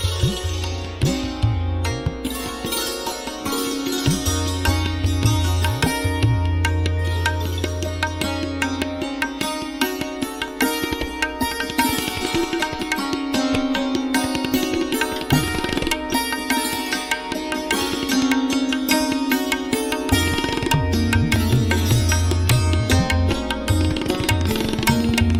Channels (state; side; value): identical; both; correlation 1.00